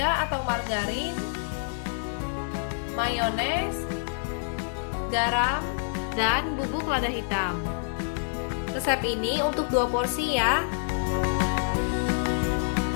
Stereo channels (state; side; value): silent; right; digital silence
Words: atau margarin, mayones, garam, dan bubuk lada hitam. Resep ini untuk 2 porsi ya.